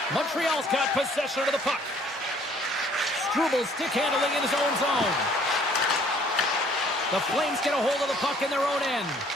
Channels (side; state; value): both; normal; correlation 0.59